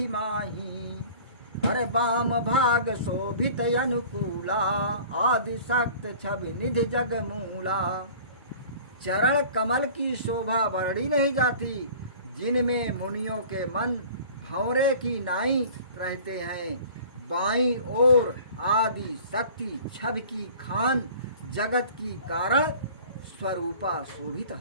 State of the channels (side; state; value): both; inverted; correlation -0.45